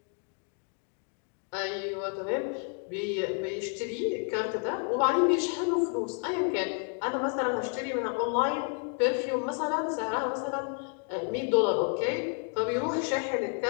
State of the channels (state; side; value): quieter; right; 39.7 dB